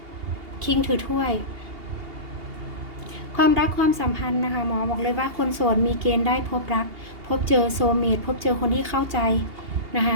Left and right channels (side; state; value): left; late; 2.8 ms